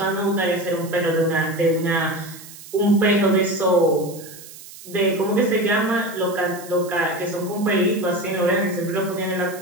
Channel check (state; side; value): noise; right; hiss, 17 dB below the sound